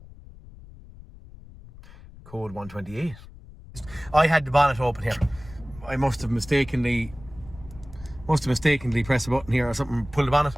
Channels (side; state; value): left; noise; rumble, 19 dB below the sound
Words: Code 128. I had the bonnet open here. I must have mistakenly pressed a button here or something, pulled the bonnet,